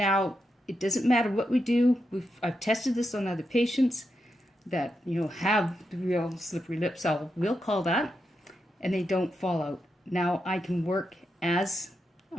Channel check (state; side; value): normal; both; correlation 0.85